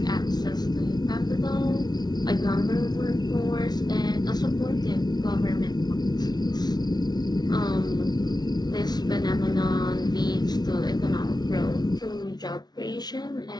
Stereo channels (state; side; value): late; right; 0.19 ms